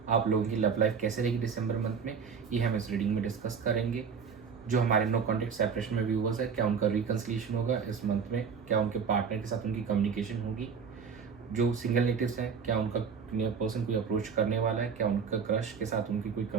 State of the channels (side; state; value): left; quieter; 6.2 dB